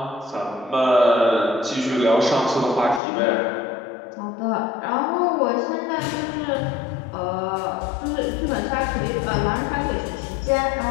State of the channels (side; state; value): right; drops out; at 3.0 s